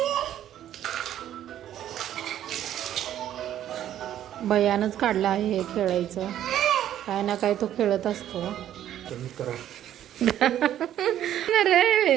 भैयानंच काढला आहे हे खेळायचं. काय ना काय तो खेळत असतो.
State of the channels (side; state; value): left; quieter; 11.4 dB